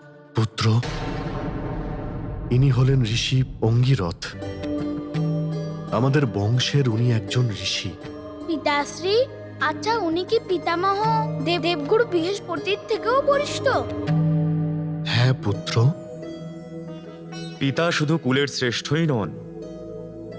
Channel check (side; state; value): both; identical; correlation 1.00